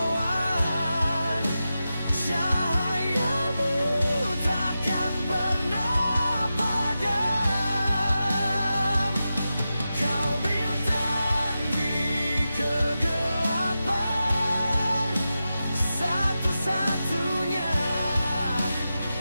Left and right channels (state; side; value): inverted; both; correlation -0.91